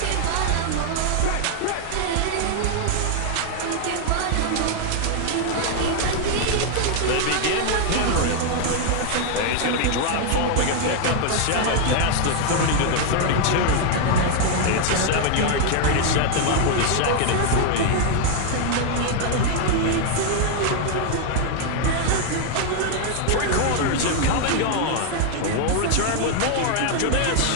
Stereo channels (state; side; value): different; both; correlation 0.00